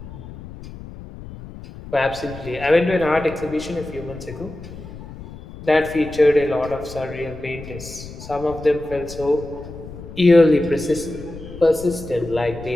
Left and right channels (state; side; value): noise; left; rumble, 14 dB below the sound